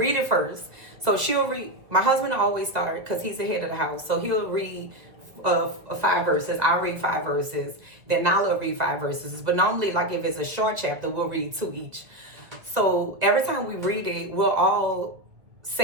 it first. So she'll read, my husband will always start because he's the head of the house. So he'll read 5 verses. I'll read 5 verses. Then Nala will read 5 verses. But normally, like, if it's a short chapter, we'll read 2 each. So every time we read it, we'll all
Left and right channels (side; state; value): left; late; 1.8 ms